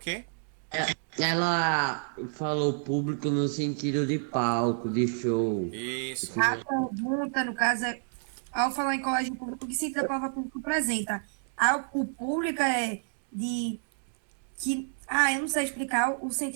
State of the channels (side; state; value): left; silent; digital silence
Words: Ela falou público no sentido de palco, de show. Isso. A pergunta, no caso, é, ao falar em colégio público, o que sentido a palavra público apresenta? O público é de... que eu não sei explicar o